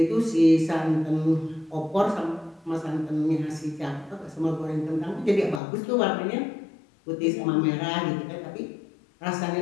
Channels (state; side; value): drops out; right; at 5.6 s